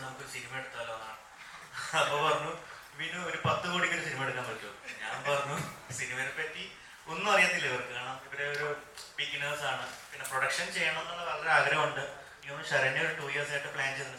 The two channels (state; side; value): identical; both; correlation 1.00